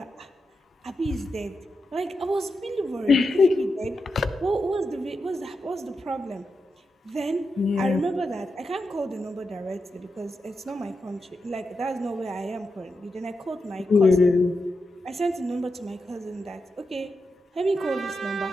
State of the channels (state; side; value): normal; both; correlation 0.87